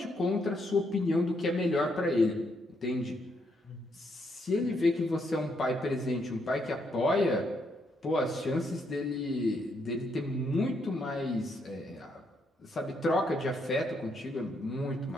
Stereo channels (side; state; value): both; normal; correlation 0.76